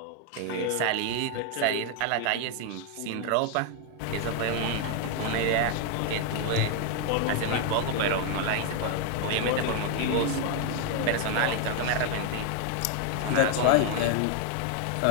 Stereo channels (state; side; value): different; both; correlation 0.01